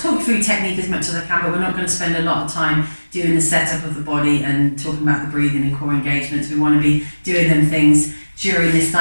through technique as much as I can, but we're not going to spend a lot of time doing the setup of the body and talking about the breathing and core engagements. We want to be doing them things during this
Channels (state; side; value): inverted; both; correlation -1.00